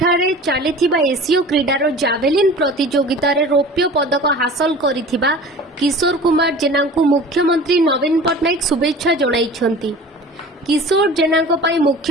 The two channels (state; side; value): normal; both; correlation 0.40